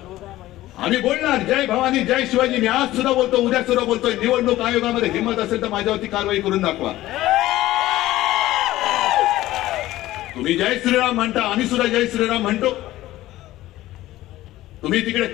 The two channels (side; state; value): right; quieter; 15.8 dB